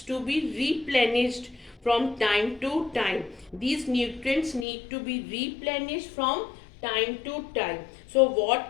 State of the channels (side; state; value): right; drops out; at 4.7 s